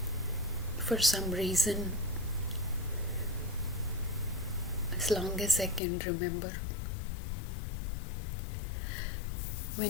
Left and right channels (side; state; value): right; drops out; at 5.8 s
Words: For some reason, as long as I can remember,